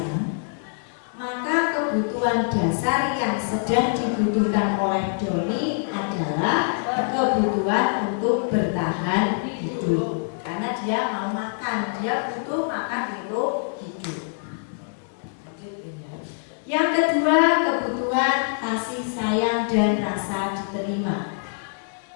maka kebutuhan dasar yang sedang dibutuhkan oleh Doni adalah kebutuhan untuk bertahan hidup. Karena dia mau makan, dia butuh makan untuk hidup. Yang kedua, kebutuhan kasih sayang dan rasa diterima.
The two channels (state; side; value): silent; right; 61 dB below the other